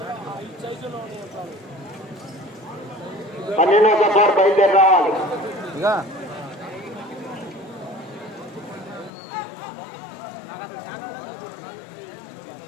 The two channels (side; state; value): right; drops out; at 9.1 s